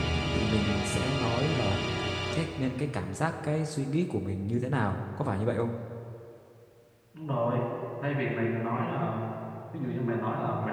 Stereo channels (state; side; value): identical; both; correlation 1.00